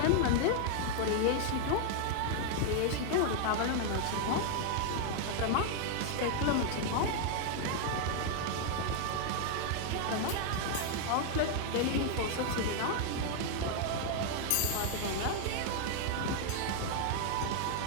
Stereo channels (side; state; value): both; different; correlation 0.00